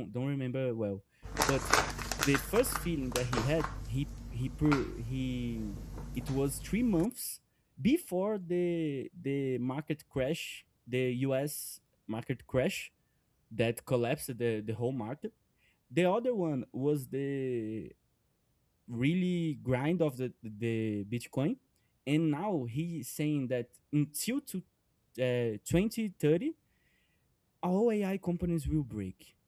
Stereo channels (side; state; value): both; identical; correlation 1.00